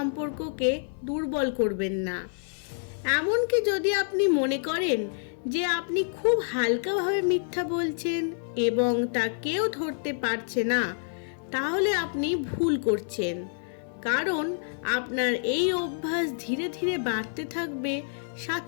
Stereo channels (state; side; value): silent; right; 59 dB below the other